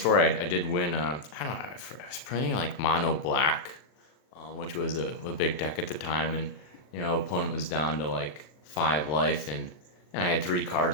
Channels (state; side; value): late; right; 40 ms